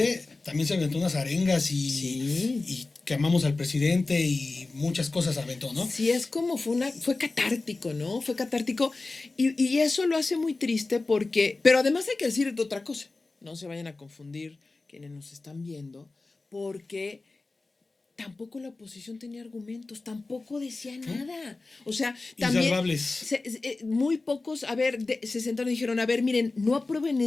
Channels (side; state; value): right; quieter; 3.4 dB